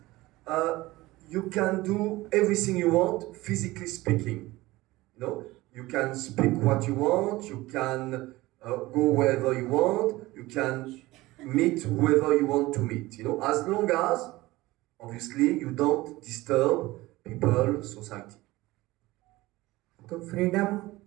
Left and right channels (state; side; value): quieter; left; 19.2 dB